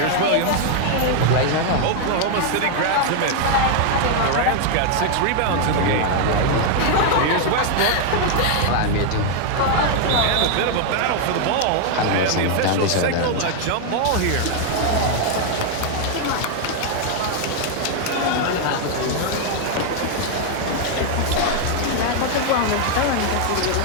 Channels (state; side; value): different; both; correlation 0.00